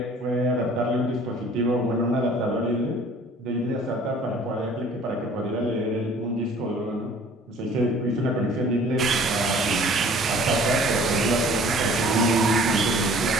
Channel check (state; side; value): normal; both; correlation 0.51